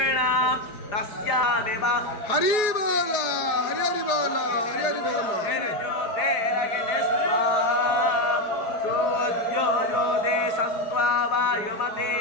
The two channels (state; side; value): late; right; 4.7 ms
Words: तस्यामेव हरि बोल, हरि हरि बोल, हरि हरि बोल। सूर्योदे सन्त्वा वायुमते